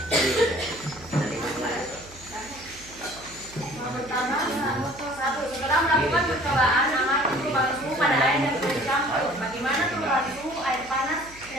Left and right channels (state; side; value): noise; right; hum, 20 dB below the sound